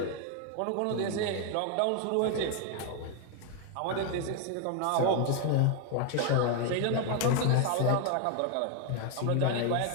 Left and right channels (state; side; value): different; both; correlation 0.01